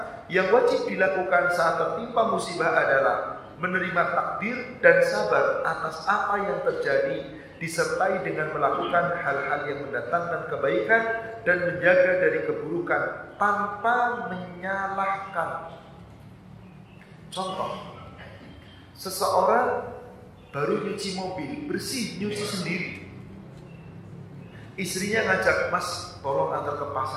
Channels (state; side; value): identical; both; correlation 1.00